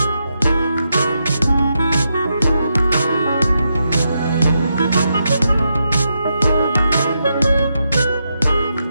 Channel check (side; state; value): both; inverted; correlation -0.84